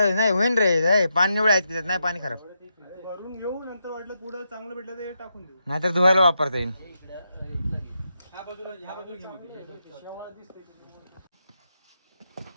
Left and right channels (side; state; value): both; inverted; correlation -0.84